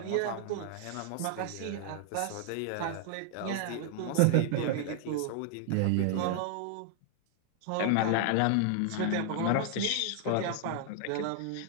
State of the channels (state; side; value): different; both; correlation 0.00